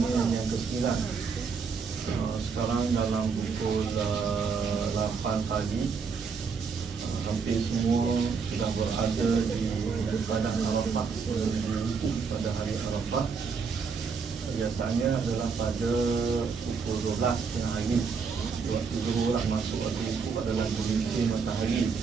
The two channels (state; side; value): quieter; left; 5.4 dB